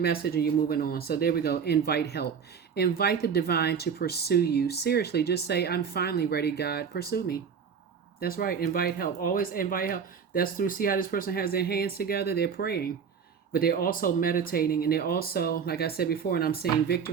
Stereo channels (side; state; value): left; quieter; 6.7 dB